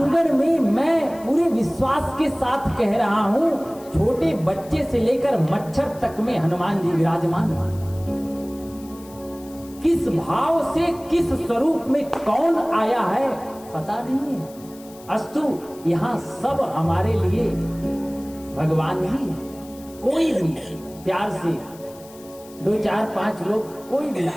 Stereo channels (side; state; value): left; noise; hiss, 22 dB below the sound